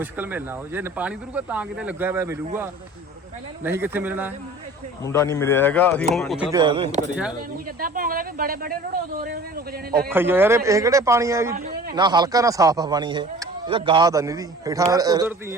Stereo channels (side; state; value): both; normal; correlation 0.44